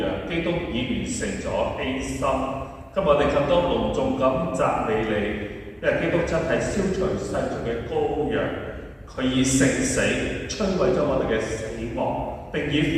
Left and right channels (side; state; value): both; identical; correlation 1.00